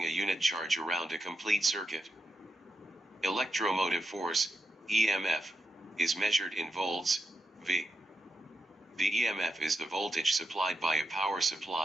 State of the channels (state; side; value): normal; both; correlation 0.86